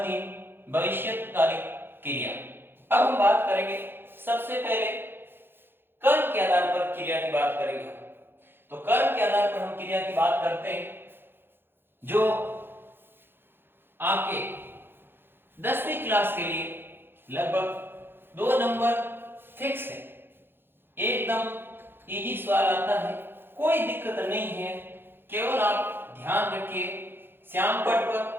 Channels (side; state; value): left; late; 0.10 ms